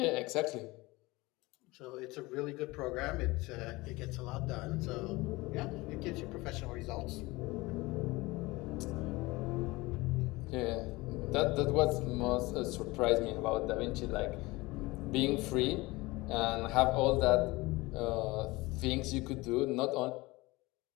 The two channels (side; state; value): right; quieter; 21.8 dB